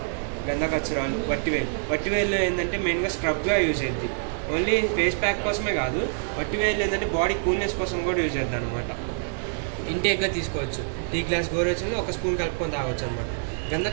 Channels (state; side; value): silent; left; 56 dB below the other